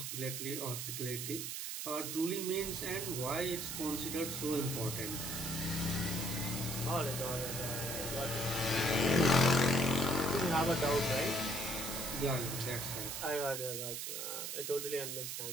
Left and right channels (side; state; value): right; noise; hiss, 4 dB below the sound